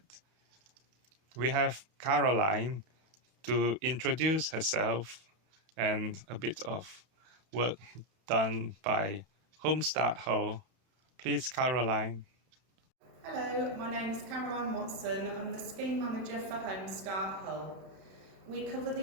We have Caroline to introduce herself and a bit of work done by Homestart Hull. Please, Caroline. Hello, my name's Caroline Watson. I'm the scheme manager for Homestart Hull. We cover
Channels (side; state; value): left; late; 31 ms